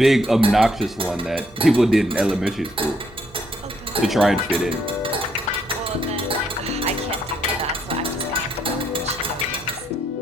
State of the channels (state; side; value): normal; both; correlation 0.72